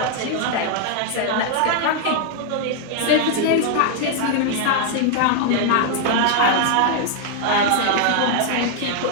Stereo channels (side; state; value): both; different; correlation 0.00